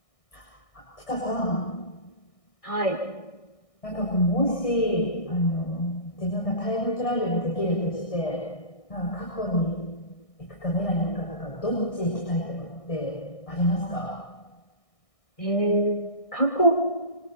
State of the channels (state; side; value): late; right; 1.6 ms